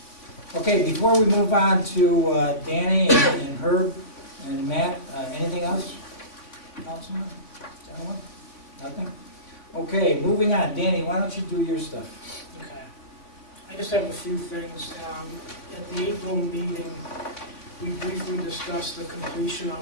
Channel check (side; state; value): right; late; 3.6 ms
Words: Okay, before we move on to Danny and Herb and Matt, anything else? Councilman, gentlemen? Nothing? Okay, moving on. Danny, why don't you do your stuff? Okay. I just have a few things. At the April meeting, we briefly discussed the completion